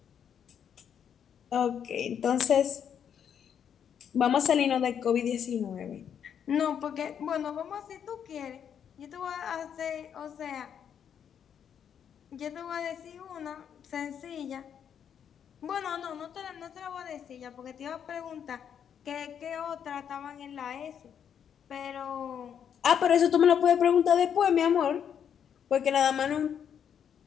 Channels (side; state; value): right; quieter; 8.4 dB